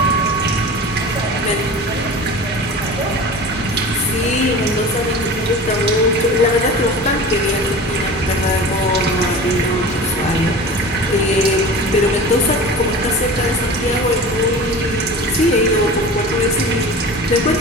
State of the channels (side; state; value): both; normal; correlation 0.36